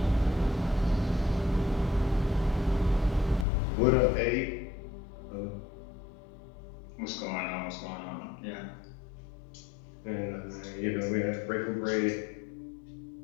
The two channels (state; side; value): drops out; right; at 3.5 s